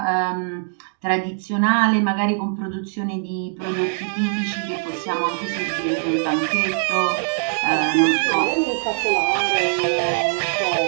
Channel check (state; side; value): silent; left; digital silence